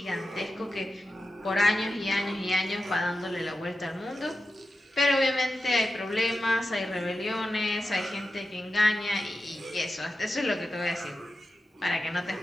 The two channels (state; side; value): normal; both; correlation 0.91